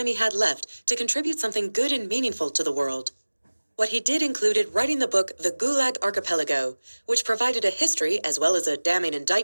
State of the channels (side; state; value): both; inverted; correlation -1.00